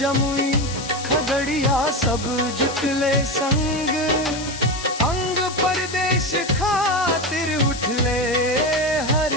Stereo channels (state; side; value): noise; left; hiss, 10 dB below the sound